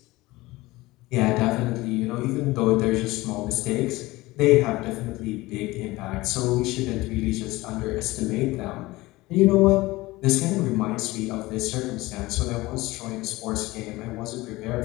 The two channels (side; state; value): right; quieter; 20.0 dB